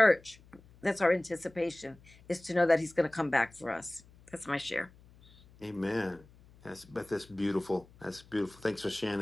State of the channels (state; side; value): noise; left; hum, 25 dB below the sound